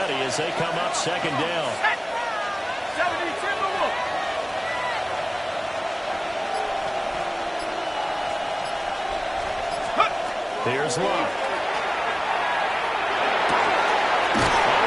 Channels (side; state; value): both; identical; correlation 1.00